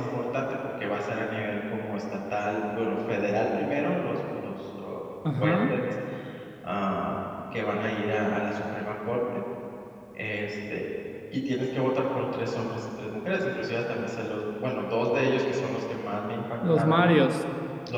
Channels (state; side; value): identical; both; correlation 1.00